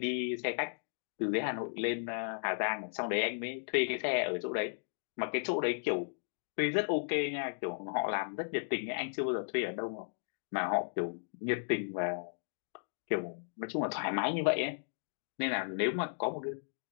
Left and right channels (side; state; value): right; silent; digital silence